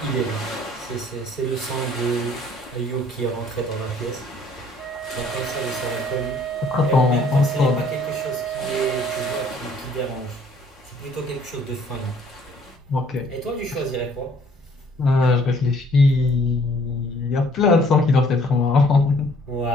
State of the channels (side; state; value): both; normal; correlation 0.59